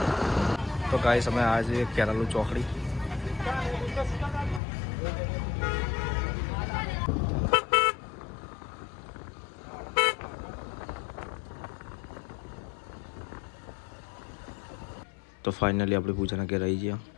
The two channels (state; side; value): drops out; right; at 4.6 s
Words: તો ગાઈસ અમે આજે કેરાલુ ચોકડી. તો ફાઇનલી આપણે પૂજાના ઘેર આવી ગયા.